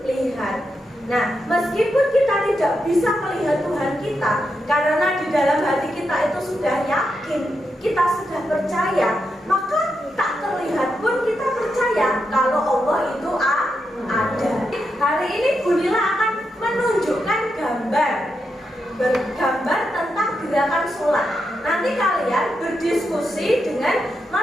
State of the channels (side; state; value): both; normal; correlation 0.85